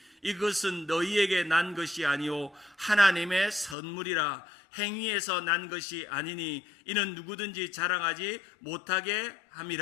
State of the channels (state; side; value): drops out; right; at 3.8 s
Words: 이것은 너희에게 난 것이 아니요 하나님의 선물이라. 행위에서 난 것이 아니니 이는 누구든지 자랑하지 못하게